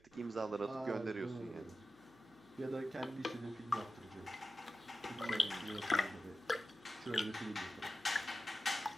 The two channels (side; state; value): right; noise; hum, 28 dB below the sound